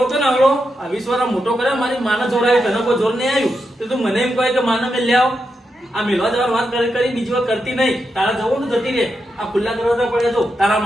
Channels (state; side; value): normal; both; correlation 0.86